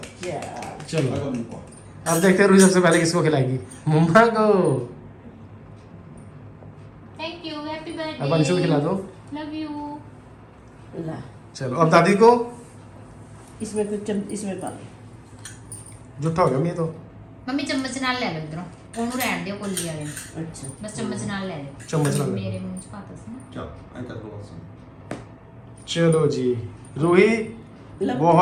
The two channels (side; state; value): both; identical; correlation 1.00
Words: चलो अब देखते हैं रूही सबसे पहले किसको खिलाएगी। मम्मा को। Thank you, happy birthday. अब अंशु को खिला दो। Love you. ला चलो अब दादी को। इसमें कुछ इसमें पा लो। जुट्टा हो गया मैं तो। मम्मी चम्मच नाल ले लो इधरों, ਉਹਨੂੰ ਰਹਿਣ ਦਿਓ ਕੋਲੀ ਵਾਲੇ ਨੂੰ। अच्छा बस चम्मच नाल ले लो। चम्मच नाल ले लो। मेरे मुंह 'ਚ ਪਾਤਾ ਸੀ ਨਾ। चलो जी रूही